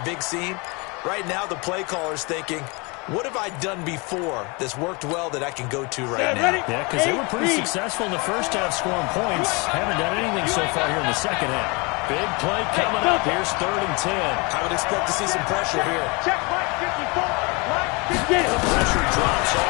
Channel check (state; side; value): quieter; right; 28.8 dB